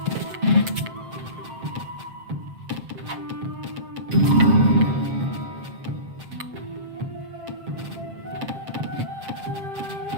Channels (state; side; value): late; left; 7.5 ms